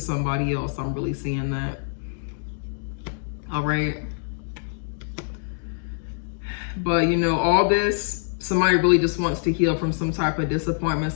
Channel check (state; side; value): silent; right; digital silence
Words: else. I'm really seeing that. All right. But you know, all this, somebody really just wants to heal from some type of disappointment,